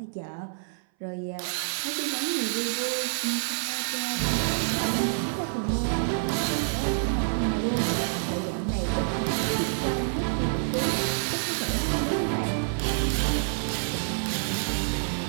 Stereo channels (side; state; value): left; silent; 58 dB below the other